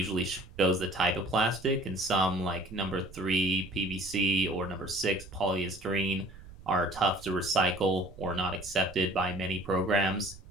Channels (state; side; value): noise; right; rumble, 18 dB below the sound